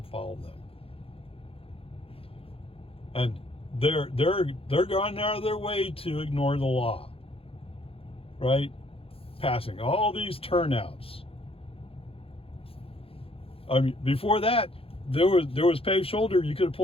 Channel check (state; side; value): late; right; 0.27 ms